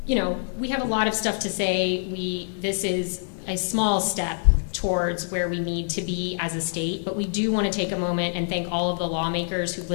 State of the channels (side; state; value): right; silent; digital silence